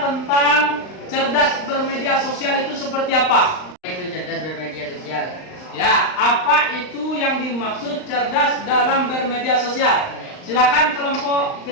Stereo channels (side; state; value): right; late; 39 ms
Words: tentang cerdas bermedia sosial itu seperti apa? Itu cerdas bermedia sosial. Ya, apa itu yang dimaksud cerdas dalam bermedia sosial? Silakan kelompok